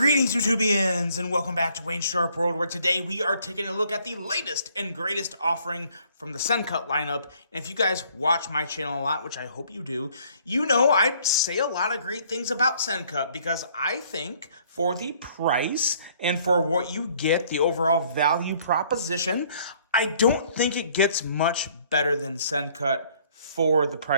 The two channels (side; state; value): both; inverted; correlation -0.61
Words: YouTubians, and welcome back to Wayne's Sharp World, where today we are taking a look at the latest and greatest offering from the Sencut lineup. And if you guys watch my channel a lot, which I hope you do, you know I say a lot of great things about Sencut because I think for the price and for what you get, the overall value proposition, I don't think it gets much better than Sencut for the